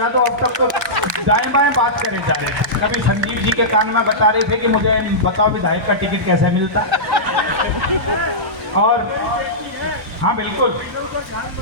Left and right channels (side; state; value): both; normal; correlation -0.15